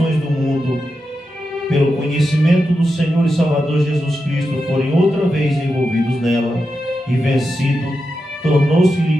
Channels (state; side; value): normal; both; correlation 0.88